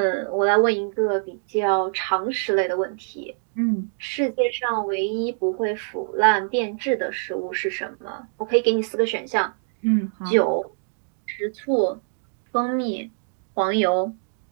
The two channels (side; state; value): left; silent; digital silence